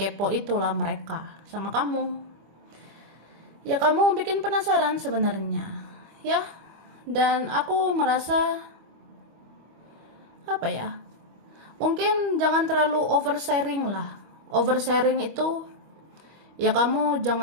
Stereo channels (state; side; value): late; left; 25 ms